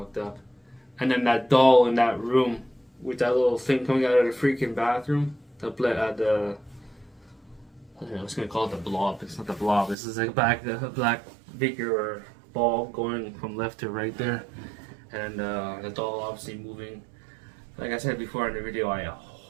up. And then that doll in that room with that little thing coming out of the freaking bathroom. I was gonna call it the blob. It's not the blob. This is like a black figure or ball going from left to right there, and the doll obviously moving. Like I said before in the video, I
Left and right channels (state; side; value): drops out; left; at 10.0 s